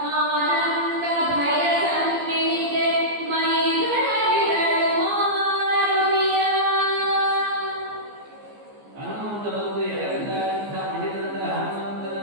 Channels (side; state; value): left; late; 14 ms